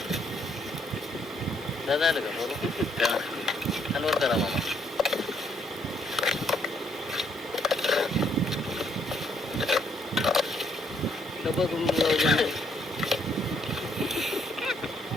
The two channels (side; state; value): both; normal; correlation 0.69